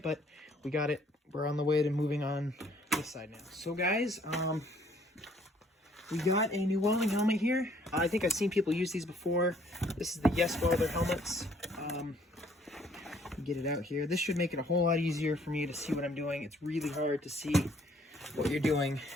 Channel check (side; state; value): both; normal; correlation 0.62